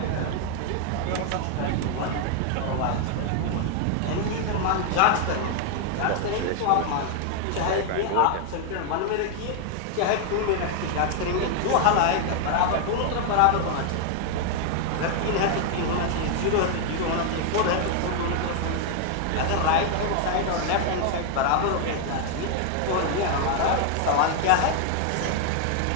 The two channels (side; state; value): both; different; correlation 0.00